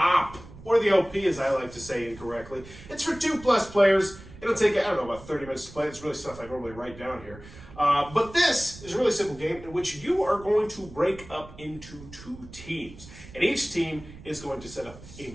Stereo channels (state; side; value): noise; right; rumble, 18 dB below the sound